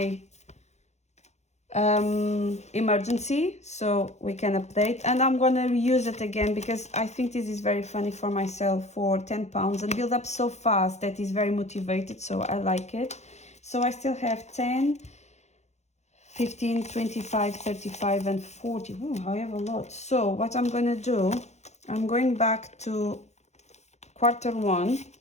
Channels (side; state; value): right; late; 0.33 ms